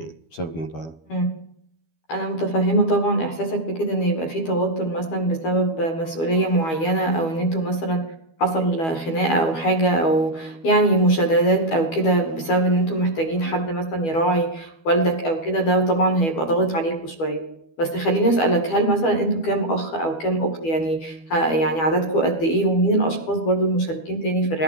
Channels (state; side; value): late; right; 12 ms